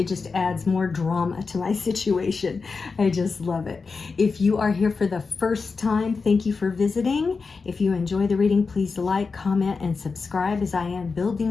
just adds more drama to my situation. I just love it. If you are here for the first time, thank you for visiting. If you enjoy the reading, please like, comment, and subscribe as I am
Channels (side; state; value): right; quieter; 4.6 dB